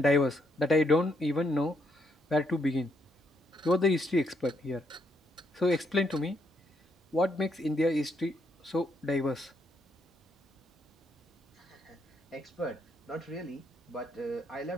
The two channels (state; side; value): normal; both; correlation 0.75